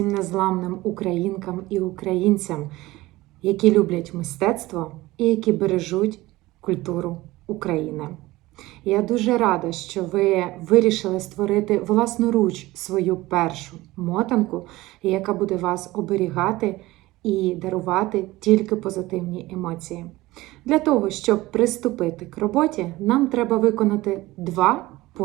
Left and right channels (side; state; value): left; quieter; 18.8 dB